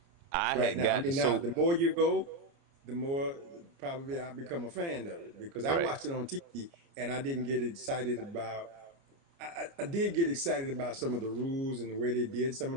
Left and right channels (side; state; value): left; late; 29 ms